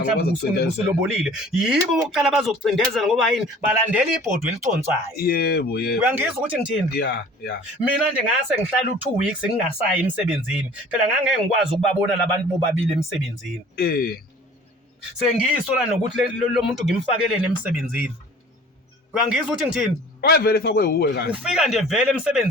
usulobolile yibo bokuqala bazokucindezela ngoba yini balandela ibhodwe eliconsayo. Yebo. Uyangizwa ukuthi ngithini? Mina nje ngase ngihlala u2 weeks ngingasayi emsebenzini phela ngangeke ngikwazi ukubabona labantu bobabili emsebenzini. Sengiyisola nokuthi lo muntu ngimfakelene emsebenzini. Uyangizwa ukuthi ngithini? Wayevele fakwe uwe kahle. Ufika nje vele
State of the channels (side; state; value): both; normal; correlation 0.48